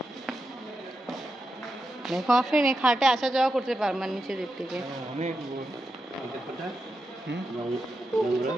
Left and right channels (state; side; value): normal; both; correlation 0.88